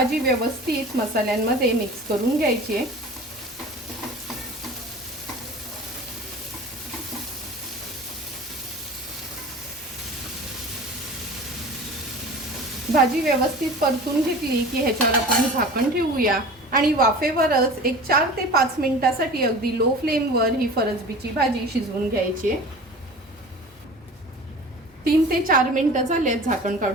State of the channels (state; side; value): normal; both; correlation 0.39